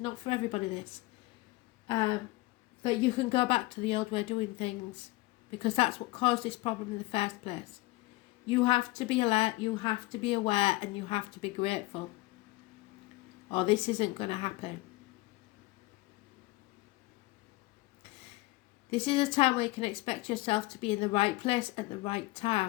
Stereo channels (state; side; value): quieter; right; 20.9 dB